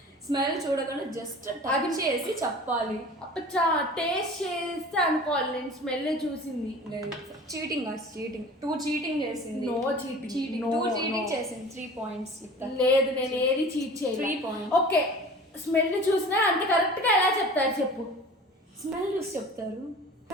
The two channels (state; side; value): normal; both; correlation 0.41